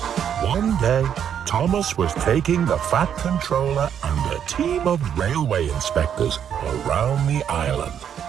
One day, Thomas was taking the Fat Controller and a team of railway inspectors around the island.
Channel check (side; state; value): left; quieter; 8.8 dB